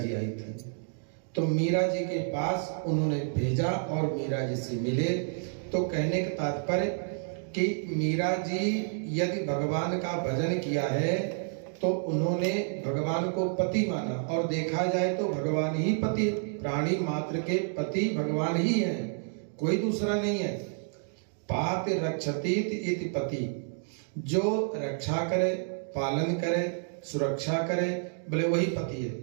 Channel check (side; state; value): left; silent; 58 dB below the other